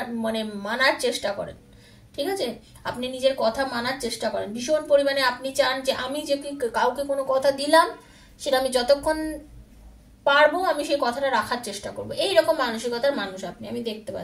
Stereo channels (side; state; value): both; identical; correlation 1.00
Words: মানার চেষ্টা করেন, ঠিক আছে? আপনি নিজের কথা মানার চেষ্টা করেন ভীষণ পরিমাণে। আপনি চান যে আমি যে কাউকে কোনো কথা দিলাম, সেটা আমি যতক্ষণ পারবো আমি সেই কথাটা রাখার চেষ্টা করবো, এইরকম মানসিকতার মানুষ আপনি, আমি দেখতে